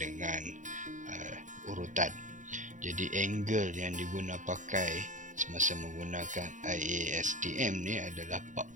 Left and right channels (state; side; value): late; left; 0.36 ms